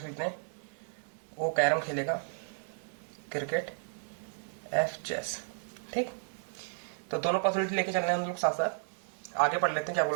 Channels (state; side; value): silent; left; digital silence